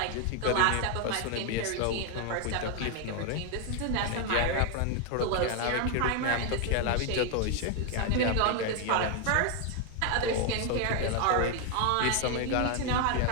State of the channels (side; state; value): both; different; correlation 0.01